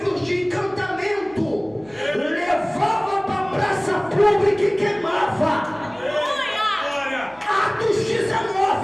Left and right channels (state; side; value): noise; left; hum, 29 dB below the sound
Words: de encantamento, levavam para a praça pública e queimava. Glória. Atos